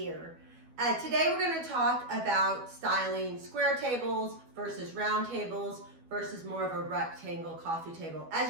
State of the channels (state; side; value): late; left; 12 ms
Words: Today we're going to talk about styling square tables versus round tables versus more of a rectangle coffee table. As